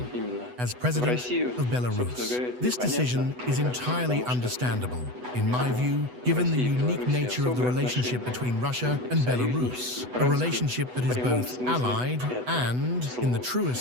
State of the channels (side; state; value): left; late; 8.1 ms